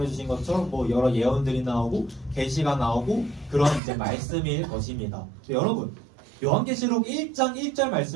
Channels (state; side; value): drops out; left; at 3.8 s